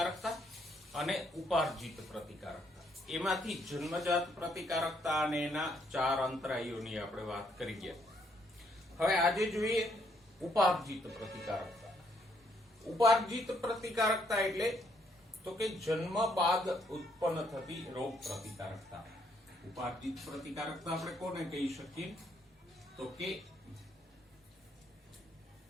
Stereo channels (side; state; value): both; normal; correlation 0.71